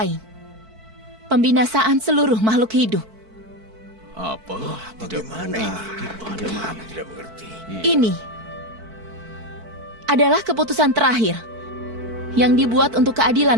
pembinasaan seluruh makhluk hidup. Apa? Bagaimana ini? Bagaimana? Tidak mengerti. Ini adalah keputusan terakhir yang dibuat untuk keadilan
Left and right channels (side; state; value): left; late; 4.5 ms